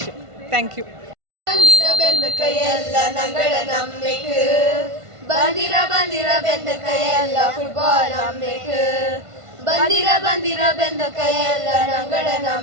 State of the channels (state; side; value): late; left; 1.5 ms